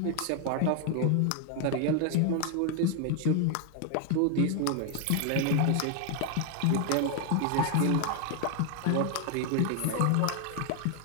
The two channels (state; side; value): different; both; correlation 0.00